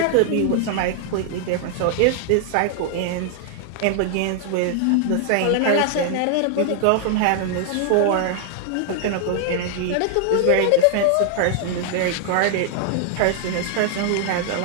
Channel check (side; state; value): both; different; correlation 0.00